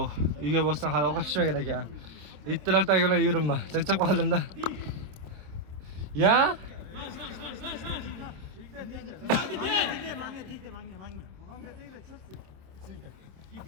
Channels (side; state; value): left; late; 27 ms